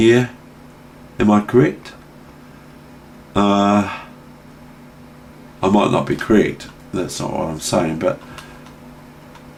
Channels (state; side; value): identical; both; correlation 1.00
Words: Am I correct? I might not be correct. That's not what I'm saying, but